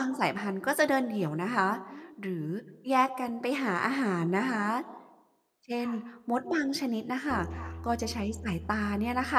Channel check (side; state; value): both; identical; correlation 1.00